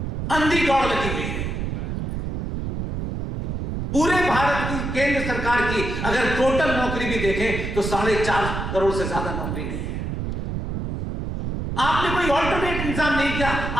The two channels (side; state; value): right; noise; rumble, 3 dB below the sound